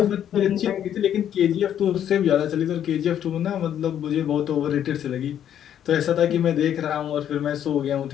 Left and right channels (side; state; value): right; quieter; 10.0 dB